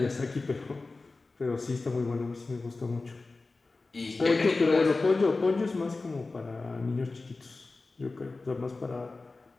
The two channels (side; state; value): right; quieter; 3.6 dB